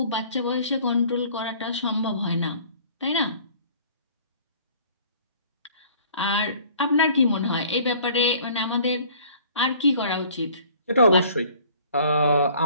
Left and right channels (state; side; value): inverted; both; correlation -0.52